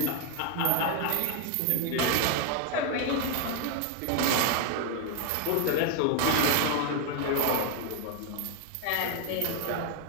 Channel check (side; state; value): both; different; correlation 0.01